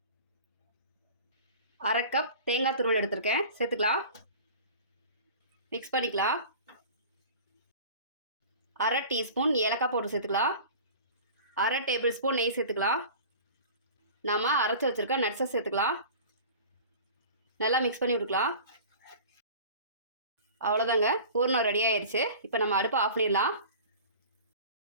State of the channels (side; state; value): both; inverted; correlation -0.39